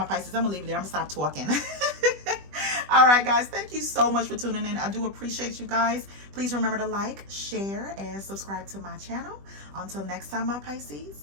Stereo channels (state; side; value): late; left; 20 ms